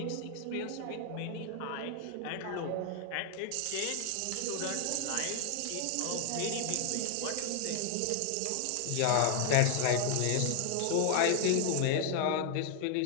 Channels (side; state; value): both; different; correlation 0.00